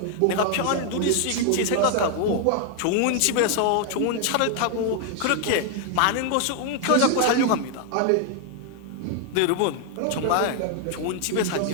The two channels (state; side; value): different; both; correlation 0.00